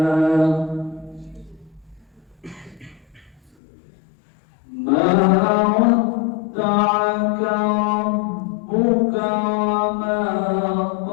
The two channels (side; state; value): right; drops out; at 3.5 s